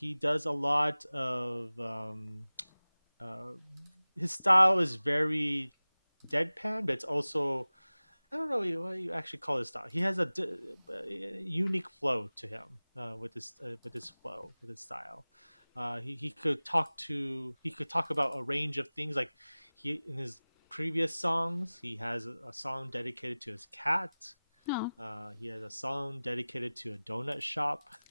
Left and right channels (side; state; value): both; inverted; correlation -0.99